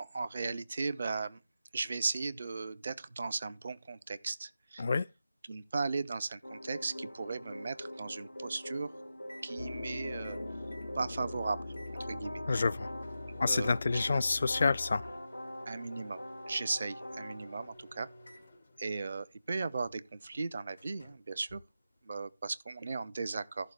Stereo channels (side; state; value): both; inverted; correlation -0.89